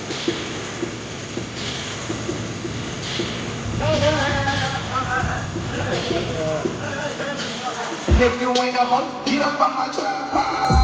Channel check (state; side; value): identical; both; correlation 1.00